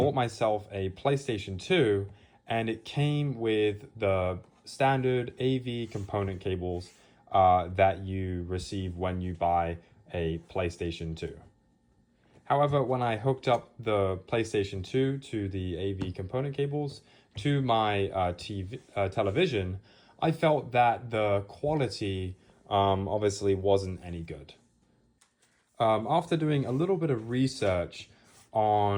myself a PlayStation 2 and it came with the standard AV component cables that you receive when you buy a PlayStation 2. However, when I hooked up the PlayStation 2 to the AV component cables to my television, I felt that the quality obviously wasn't any good. After doing a little bit of research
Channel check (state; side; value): identical; both; correlation 1.00